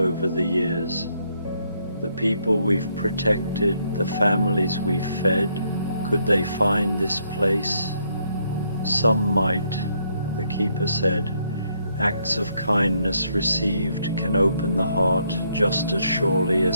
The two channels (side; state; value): both; inverted; correlation -0.73